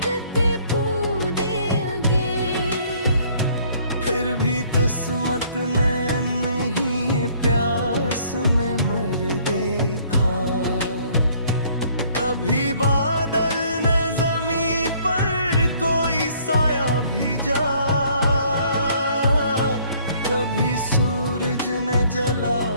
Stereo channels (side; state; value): both; inverted; correlation -0.60